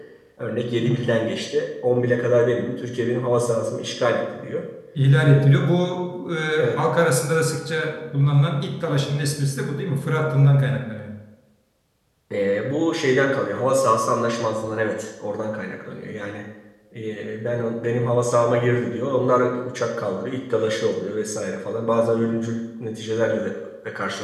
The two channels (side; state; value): both; identical; correlation 1.00